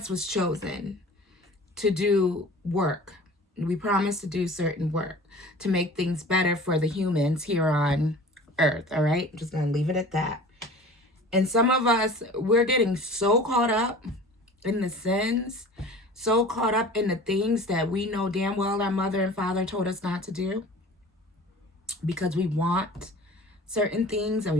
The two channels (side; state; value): both; normal; correlation 0.42